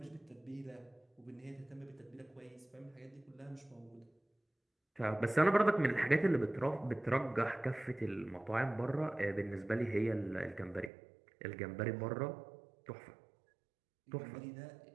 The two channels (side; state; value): left; drops out; at 10.9 s